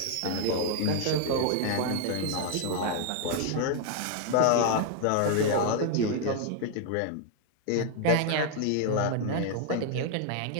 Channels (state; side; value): different; both; correlation 0.00